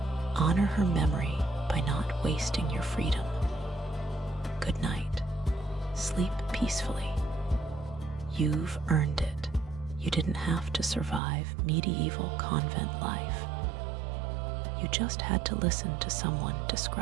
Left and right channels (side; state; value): left; drops out; at 11.2 s